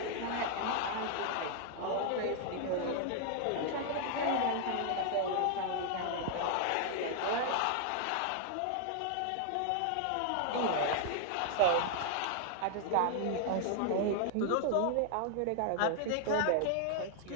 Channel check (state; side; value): different; both; correlation 0.00